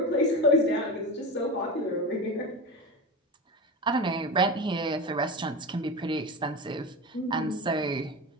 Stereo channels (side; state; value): both; normal; correlation 0.24